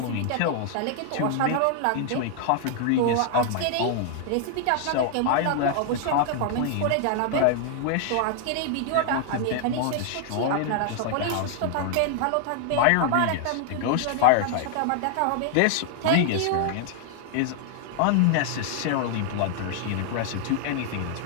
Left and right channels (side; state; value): both; different; correlation 0.00